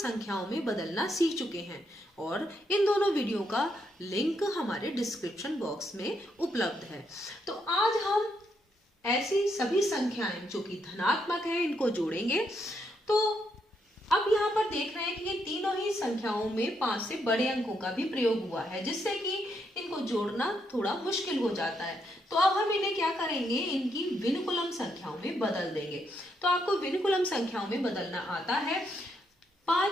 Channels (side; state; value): both; normal; correlation 0.78